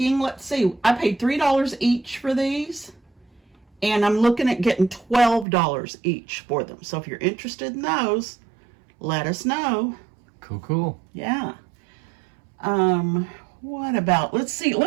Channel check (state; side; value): drops out; left; at 5.5 s